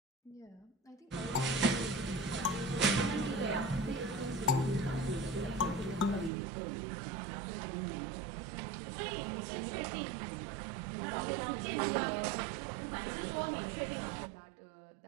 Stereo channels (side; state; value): left; drops out; at 6.3 s